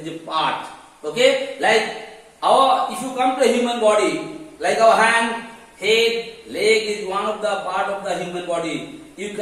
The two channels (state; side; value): identical; both; correlation 1.00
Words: is a part. Okay? Like if you come to a human body, like our hand, head, leg is one of the part of the human body. You